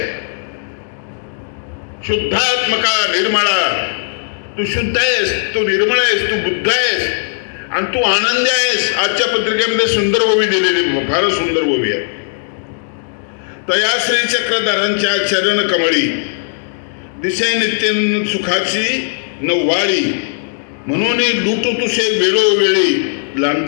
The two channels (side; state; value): right; silent; digital silence